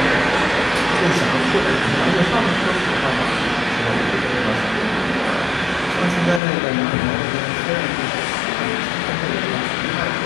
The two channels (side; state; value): right; drops out; at 6.4 s